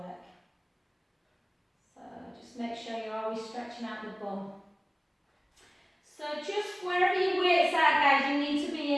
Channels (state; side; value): identical; both; correlation 1.00